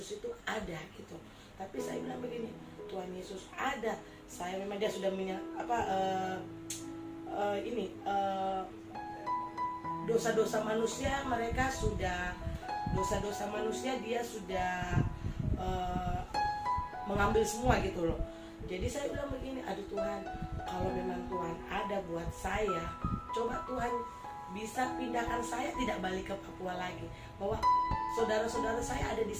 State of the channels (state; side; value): identical; both; correlation 1.00